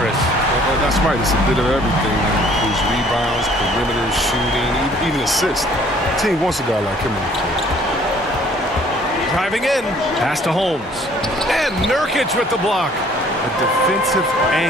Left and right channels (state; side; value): normal; both; correlation 0.57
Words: Well, that's right. It's a bit of everything. It includes rebounds, perimeter shooting, even assists. The team wants a guy like him on the court. Driving in, pass to Holmes. And Nurkic with the block. A defensive